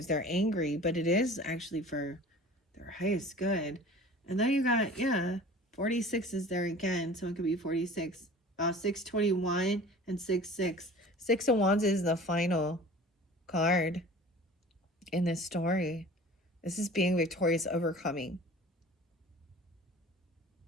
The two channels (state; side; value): normal; both; correlation 0.43